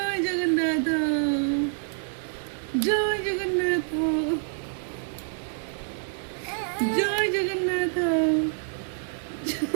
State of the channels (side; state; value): left; silent; 60 dB below the other